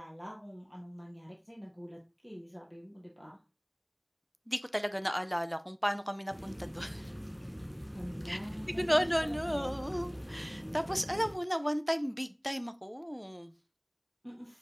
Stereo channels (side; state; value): both; identical; correlation 1.00